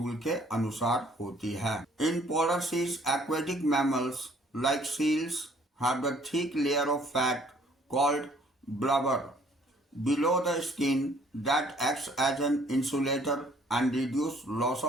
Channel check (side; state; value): both; normal; correlation 0.60